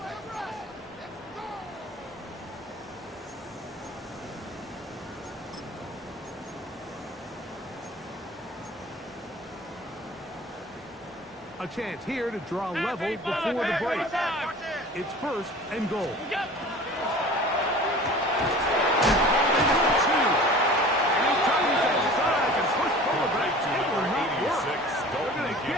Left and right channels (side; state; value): both; normal; correlation 0.42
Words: A chance here to draw level before the break. It's 1st and goal. Get